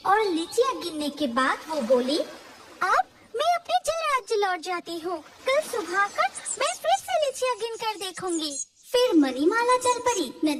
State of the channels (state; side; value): identical; both; correlation 1.00